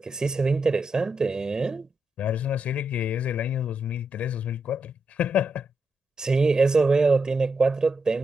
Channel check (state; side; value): normal; both; correlation 0.84